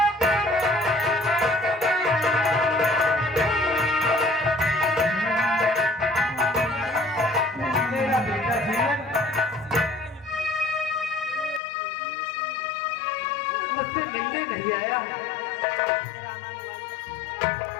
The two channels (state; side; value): drops out; right; at 11.6 s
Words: मेरा बेटा जीवन मुझसे मिलने नहीं आया।